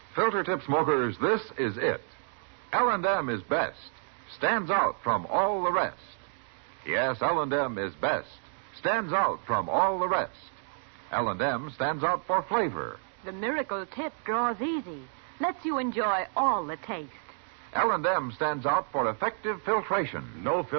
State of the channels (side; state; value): left; silent; digital silence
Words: Filter tip smokers, this is it. L&M is best. Stands out from all the rest. Yes, L&M is best. Stands out from all the rest. L&M stands out for flavor. The miracle tip draws easy. Lets you enjoy all the taste. L&M stands out for effective filtration. No